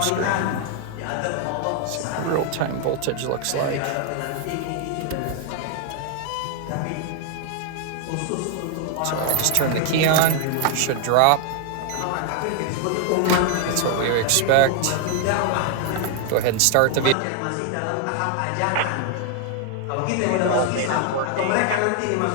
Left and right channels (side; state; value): both; different; correlation 0.00